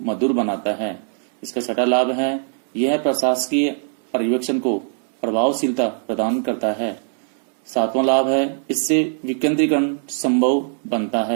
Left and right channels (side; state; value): left; silent; 65 dB below the other